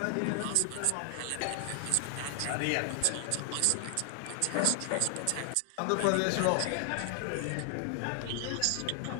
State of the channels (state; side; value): different; both; correlation 0.00